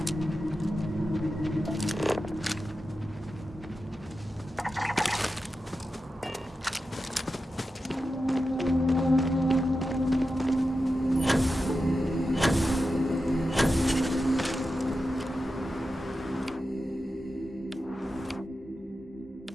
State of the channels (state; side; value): normal; both; correlation 0.91